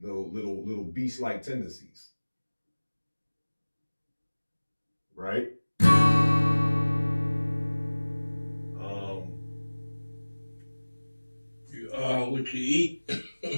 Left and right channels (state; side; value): inverted; both; correlation -1.00